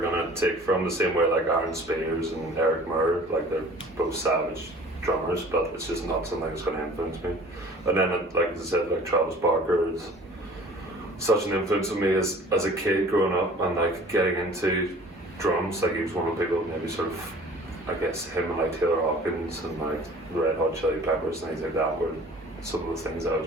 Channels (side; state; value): both; normal; correlation 0.47